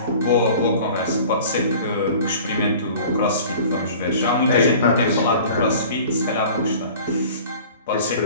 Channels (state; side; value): inverted; both; correlation -0.44